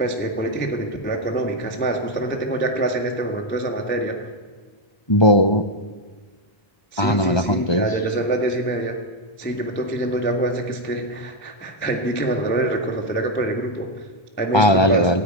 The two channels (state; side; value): late; right; 1.2 ms